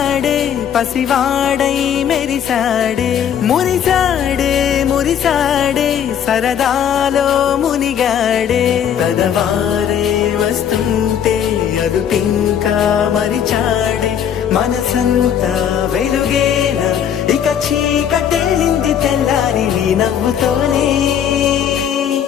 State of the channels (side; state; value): right; quieter; 9.0 dB